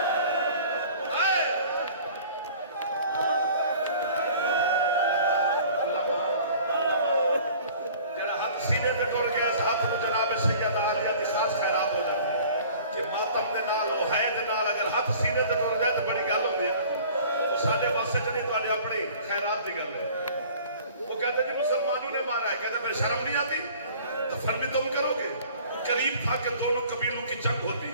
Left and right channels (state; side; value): inverted; both; correlation -0.48